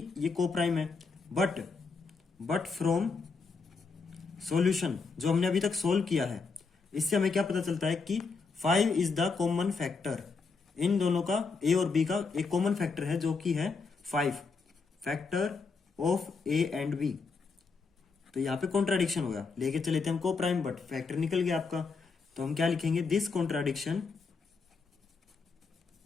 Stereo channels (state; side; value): quieter; right; 4.6 dB